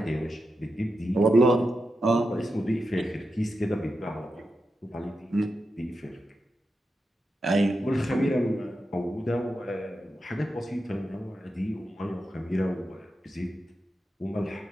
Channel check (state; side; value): normal; both; correlation 0.88